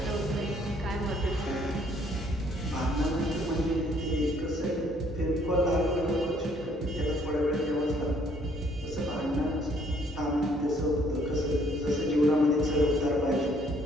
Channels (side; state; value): both; normal; correlation 0.64